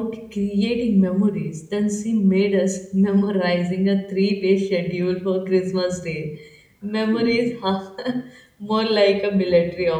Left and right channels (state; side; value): identical; both; correlation 1.00